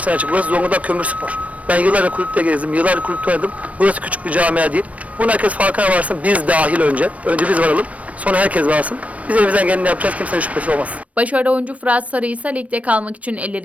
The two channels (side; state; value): left; late; 0.066 ms